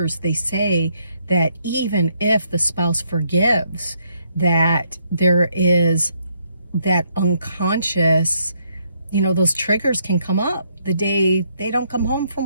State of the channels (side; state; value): both; inverted; correlation -0.73